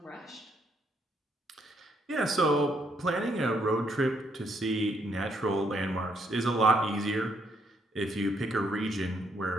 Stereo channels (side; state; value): both; normal; correlation 0.72